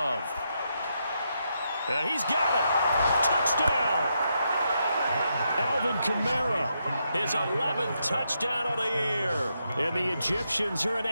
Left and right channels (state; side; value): inverted; both; correlation -0.81